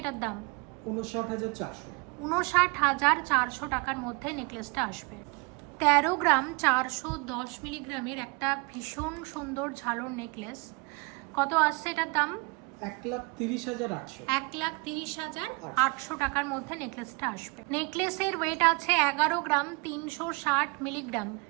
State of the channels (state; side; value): quieter; left; 29.2 dB